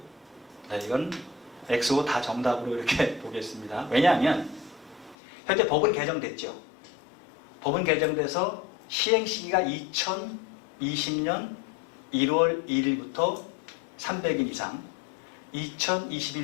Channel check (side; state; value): right; drops out; at 5.2 s